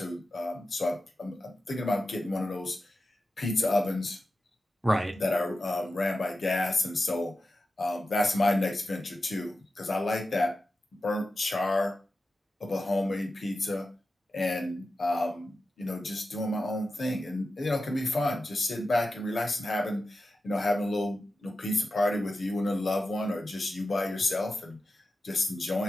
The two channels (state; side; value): normal; both; correlation 0.92